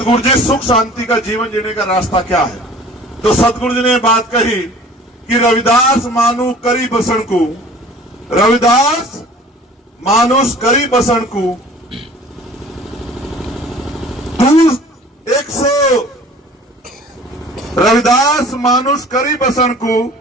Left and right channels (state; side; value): normal; both; correlation 0.47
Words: जी सुख शांति का जीवन जीने का रास्ता क्या है, तो सतगुरु जी ने बात कही कि रविदास मानु करी बसन को रविदास मानुष करी बसन को 100 रविदास मानुष करी बसन को